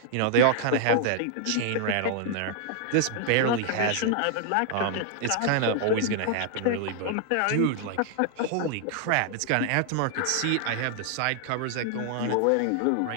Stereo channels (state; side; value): different; both; correlation 0.00